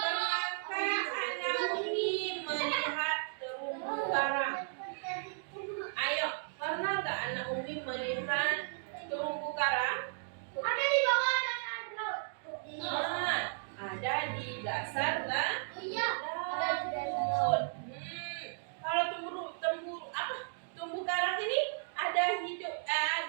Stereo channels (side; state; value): left; silent; digital silence